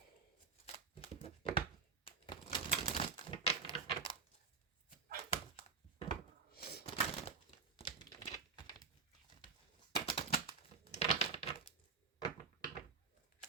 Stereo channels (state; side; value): quieter; left; 5.1 dB